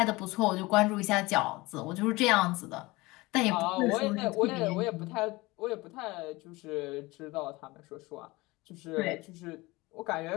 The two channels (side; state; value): right; quieter; 21.9 dB